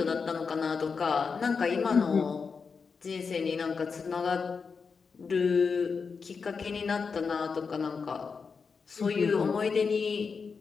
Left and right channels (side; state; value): right; quieter; 5.3 dB